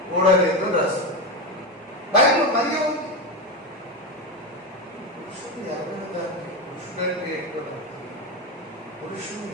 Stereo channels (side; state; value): both; normal; correlation 0.15